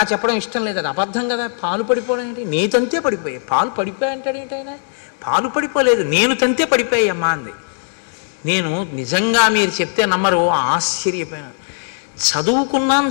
చెప్పడం ఇష్టం లేదు, అది అబద్ధం కదా. పాలు పడిపోవడం ఏంటి? నేను తంతే పడిపోయా. పాలు పడిపోయా అంటాడు ఏంటైనా? పాలు పడిపోలేదు, నేను తంతే పడిపోయామ్మా అంది. నేను నిజంగా మీరు చెప్తే నమ్మరు, ఆశ్చర్యపోయాను. చదువుకున్నాం,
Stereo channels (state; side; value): silent; right; digital silence